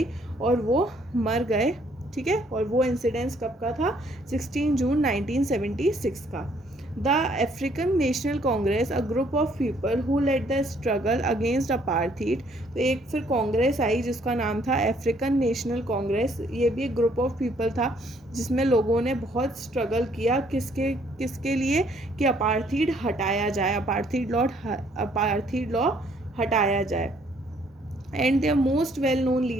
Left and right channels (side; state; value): both; normal; correlation 0.65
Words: और वो मर गए ठीक है, और वो इंसिडेंस कब का था? 16 जून 1976 का। The African National Congress, a group of people who led the struggle against apartheid. तो एक फिर कांग्रेस आई जिसका नाम था अफ्रीकन नेशनल कांग्रेस। ये भी एक ग्रुप ऑफ पीपल था जिसमें लोगों ने बहुत स्ट्रगल किया किसके किसके लिए, कि अपार्थीड हटाया जाए, अपार्थीड लॉ हटाया जाए। And their most well known